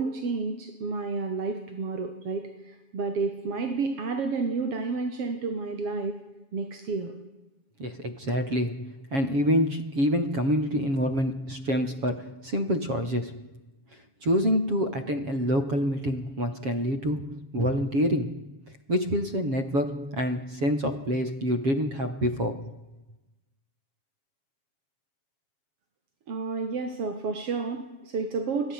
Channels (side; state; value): left; late; 7.3 ms